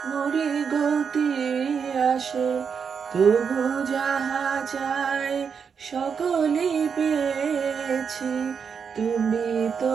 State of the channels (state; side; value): quieter; left; 6.5 dB